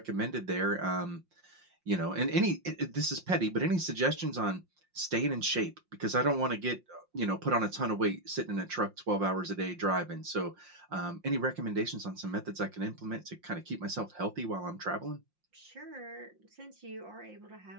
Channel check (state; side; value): late; left; 5.6 ms